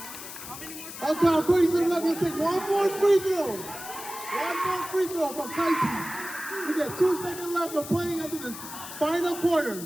Okay, according to the left, he'll take 1 more free throw. 1 more free throw from Kaichi. We got 2 seconds left of playing into the final quarter.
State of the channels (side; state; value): left; noise; hiss, 11 dB below the sound